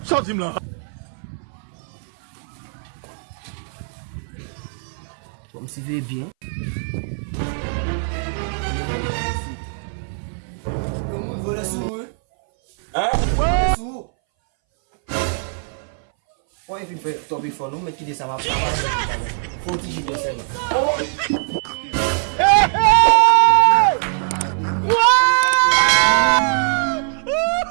Sortim là. Comme si veut bien. Gomun vole sou. Hein? Sou. Why if you fè top before nou, men ki de sa ma pa. Faut ti jide se la. Wow!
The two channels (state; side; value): silent; left; 61 dB below the other